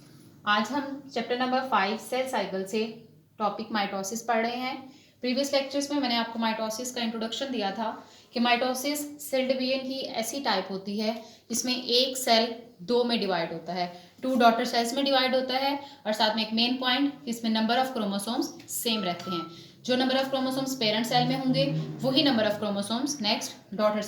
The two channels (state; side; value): identical; both; correlation 1.00